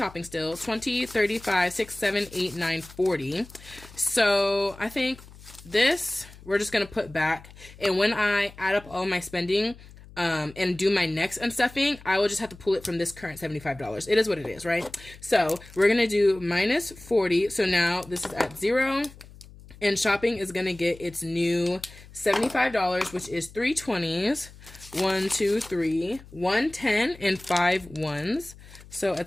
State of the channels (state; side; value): noise; left; hum, 20 dB below the sound